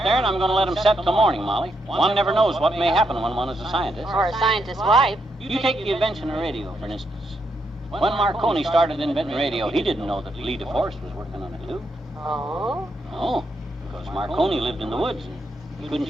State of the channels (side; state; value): both; normal; correlation 0.79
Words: there, and I'm going to let them set till morning, Molly. One never knows what may happen when one is a scientist. Or a scientist's wife. You take the invention of radio, for instance. When Marconi started inventing radio, he didn't know that Lee DeForest was working on it, too. Oh? No, because Marconi lived in the woods, and he